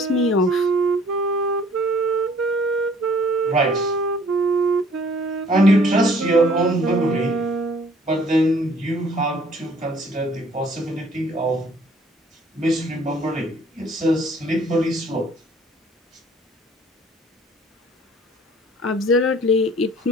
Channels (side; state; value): both; normal; correlation 0.57